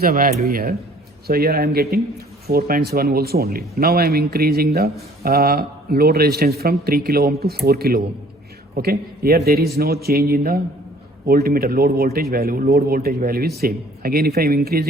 value here, so here I am getting 4.7 volts only. Now I am increasing the load resistance from 3 kilo ohm to 4 kilo ohm. Okay, here there is no change in the voltmeter load voltage value. Load voltage value is same. Again, if I am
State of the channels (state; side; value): normal; both; correlation 0.55